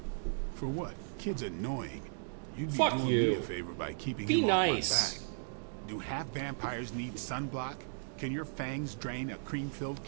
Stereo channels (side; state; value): left; silent; digital silence